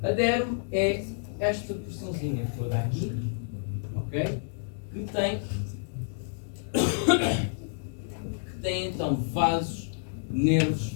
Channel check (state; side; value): silent; right; digital silence